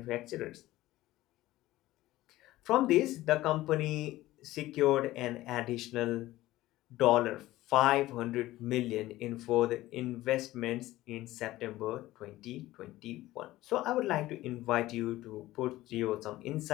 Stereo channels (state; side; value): quieter; right; 16.6 dB